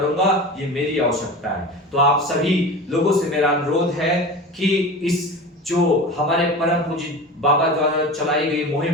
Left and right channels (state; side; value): normal; both; correlation 0.31